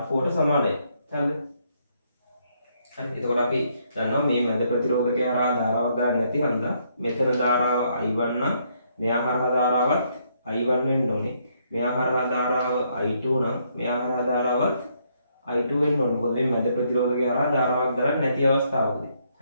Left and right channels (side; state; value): both; inverted; correlation -0.72